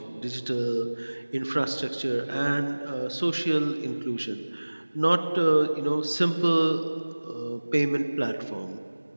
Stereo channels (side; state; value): both; inverted; correlation -1.00